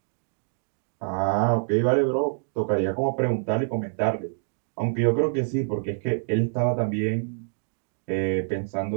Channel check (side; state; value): left; silent; digital silence